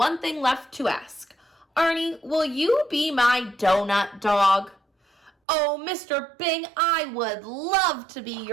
thing left to ask. Arnie, will you be my donut dog? Oh, Mr. Bing, I would love to be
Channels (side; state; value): left; drops out; at 5.3 s